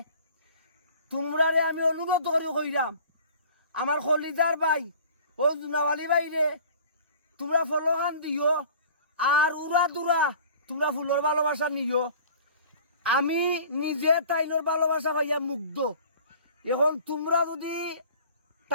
তোমরারে আমি অনুরোধ করি কইরাম আমার খলিদার ভাই ও জুনাওয়ালি ভাই রে তোমরা ফলো খান দিও আর উড়া দুরা তোমরা ফুলের ভালোবাসা নিও আমি নিজে তাইনোর ভালোবাসা পাইয়া মুগ্ধ এখন তোমরা যদি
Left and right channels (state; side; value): inverted; both; correlation -0.46